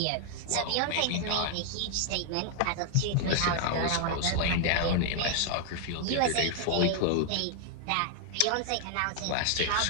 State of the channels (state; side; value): different; both; correlation 0.00